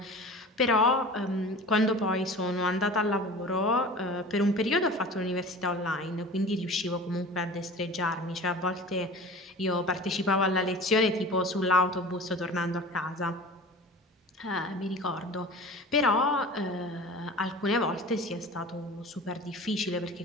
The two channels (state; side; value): normal; both; correlation 0.38